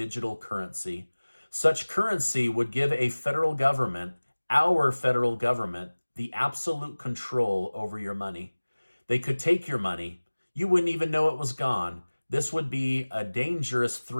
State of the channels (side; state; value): both; inverted; correlation -1.00